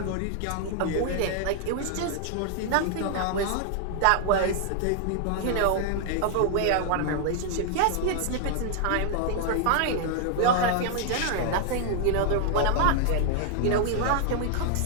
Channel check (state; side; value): different; both; correlation 0.00